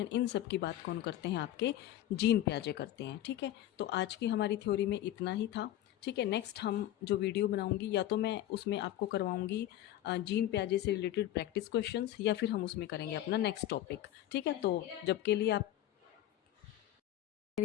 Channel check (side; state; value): right; quieter; 13.1 dB